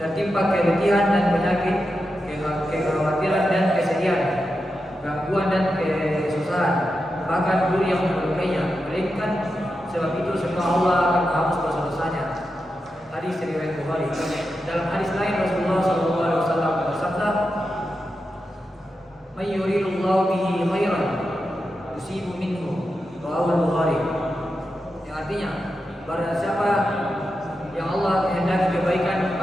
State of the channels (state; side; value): normal; both; correlation 0.89